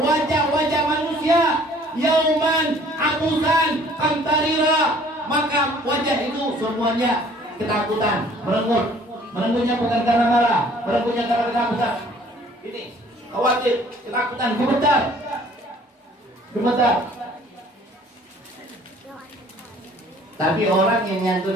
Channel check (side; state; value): both; normal; correlation 0.55